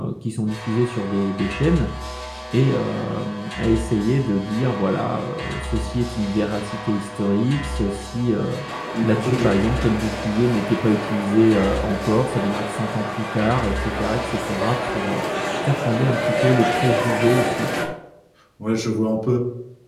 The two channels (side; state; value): both; identical; correlation 1.00